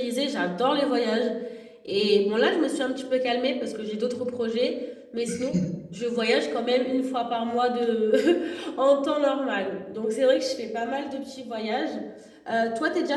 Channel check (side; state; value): both; identical; correlation 1.00